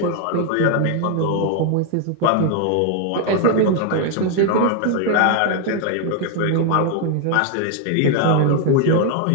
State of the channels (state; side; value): different; both; correlation 0.00